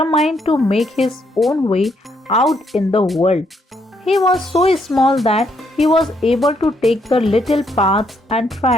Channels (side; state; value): both; normal; correlation 0.73